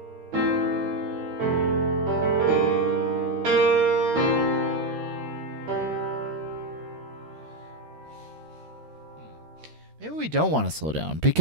Maybe we don't want to slow down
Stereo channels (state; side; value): late; left; 13 ms